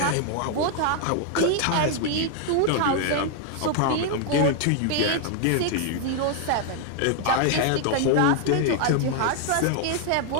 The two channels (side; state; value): both; different; correlation 0.00